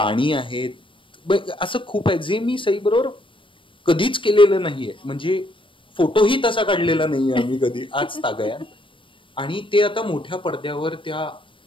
आहेत, असं खूप आहे जे मी सई बरोबर कधीच केलेलं नाहीये. म्हणजे फोटोही तसा काढलेला नाहीये आम्ही कधी आज तागयात. आणि ते आता मोठ्या पडद्यावर त्या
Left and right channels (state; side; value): late; right; 0.25 ms